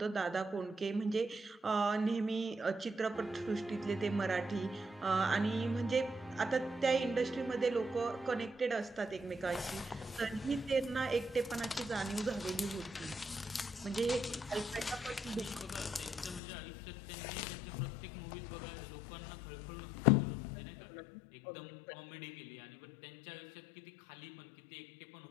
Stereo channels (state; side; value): drops out; right; at 16.4 s